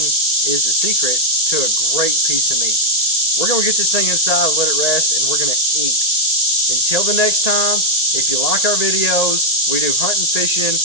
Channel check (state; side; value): late; right; 1.8 ms